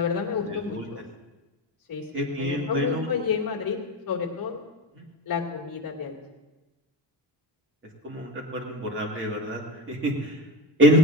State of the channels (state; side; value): normal; both; correlation 0.20